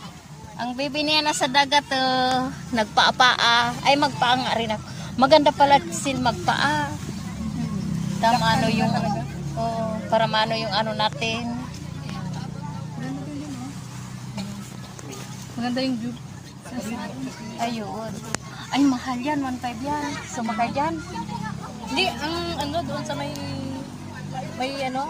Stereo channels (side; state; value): both; identical; correlation 1.00